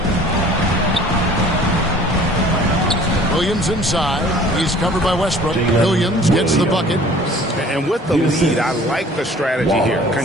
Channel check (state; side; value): normal; both; correlation 0.50